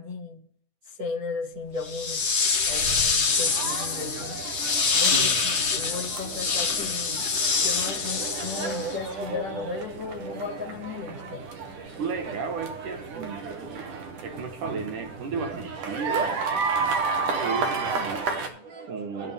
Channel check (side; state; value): left; late; 10 ms